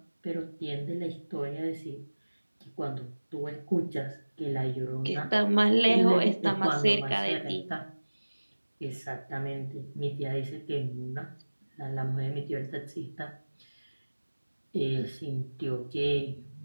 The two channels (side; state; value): both; inverted; correlation -1.00